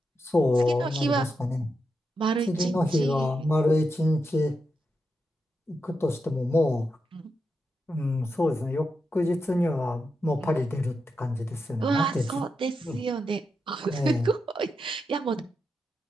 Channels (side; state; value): both; normal; correlation 0.86